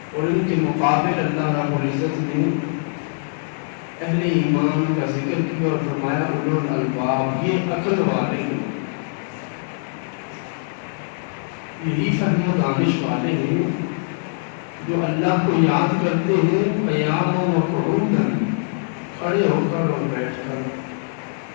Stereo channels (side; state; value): right; silent; digital silence